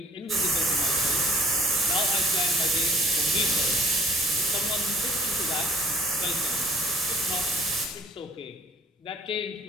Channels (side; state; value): both; normal; correlation 0.57